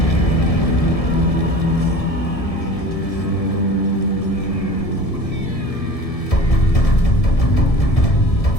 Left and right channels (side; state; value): right; late; 1.7 ms